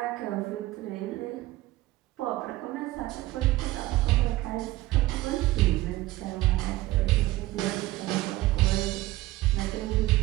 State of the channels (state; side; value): quieter; left; 17.7 dB